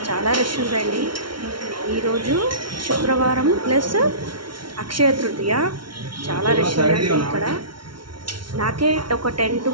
చాలా రష్ ఉందండి. ఈరోజు శుక్రవారం ప్లస్ అక్షయ తృతీయ. చాలా రష్ ఉందండి ఇక్కడ. నాకే ఒక 10 to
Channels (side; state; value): left; late; 0.73 ms